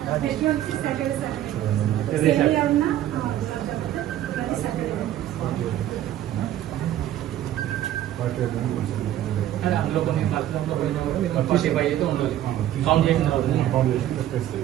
అందులో కొన్ని కష్టంలో పోయినా కూడా మీకు 45 అయితే ఉండదు. కౌంట్ చేసిన తర్వాత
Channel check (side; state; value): left; quieter; 12.3 dB